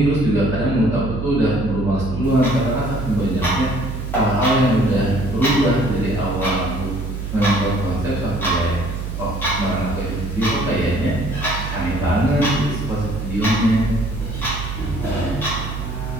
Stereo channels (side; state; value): right; noise; hum, 6 dB below the sound